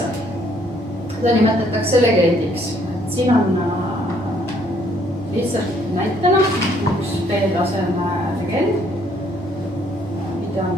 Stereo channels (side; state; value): both; normal; correlation 0.66